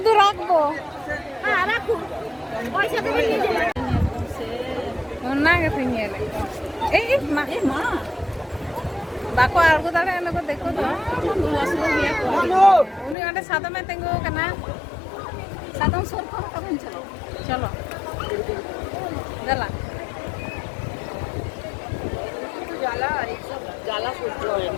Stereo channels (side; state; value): right; drops out; at 13.2 s